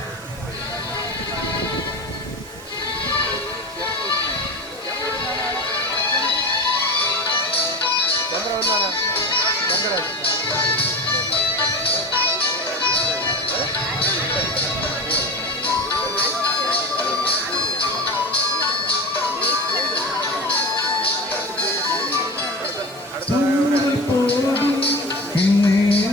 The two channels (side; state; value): both; normal; correlation 0.29